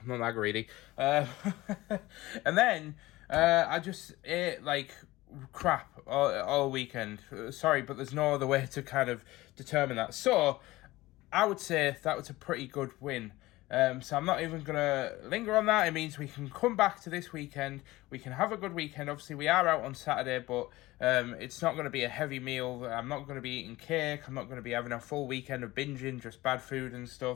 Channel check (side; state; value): right; quieter; 18.7 dB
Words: that greedy. And then I just ate like crap all weekend. Sorry, but there's no other way to kind of determine that. So I would say that was a pretty good win. So I'm not even going to linger on that. It means we can come back to this weekend. We can have a good weekend. Obviously, we are out on Saturday, but it's not going to be a heavy meal. I'm not going to be eating cake. I'm not going to be having a full weekend of binging, just bad food and